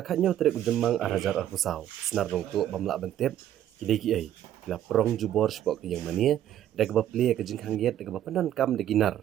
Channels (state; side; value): quieter; left; 11.5 dB